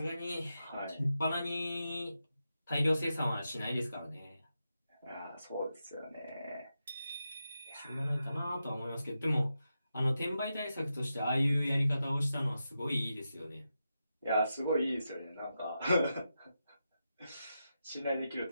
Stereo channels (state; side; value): inverted; both; correlation -0.88